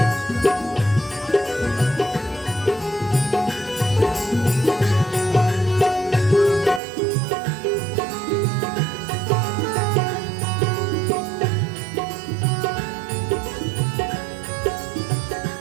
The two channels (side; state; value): left; drops out; at 6.8 s